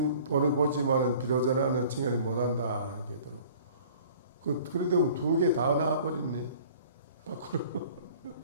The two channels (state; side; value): inverted; both; correlation -0.49